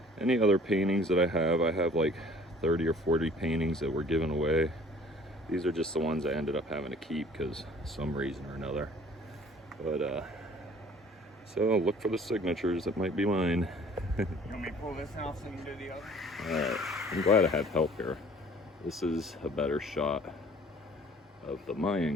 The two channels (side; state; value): both; normal; correlation 0.52